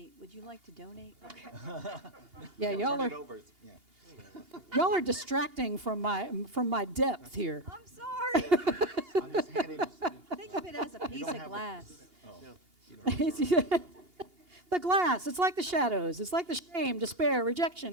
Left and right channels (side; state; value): left; late; 2.8 ms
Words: Would you like to donate? Okay. Yeah, y'all are distracting from my depth here. I'm sorry. I'm just handing it. Think of it as a piece of glass. The glass, it's like the shadows. It's like the shame, despair,